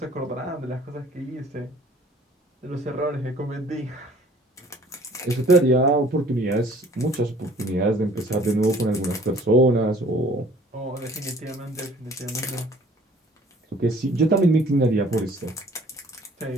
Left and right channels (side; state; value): both; normal; correlation 0.54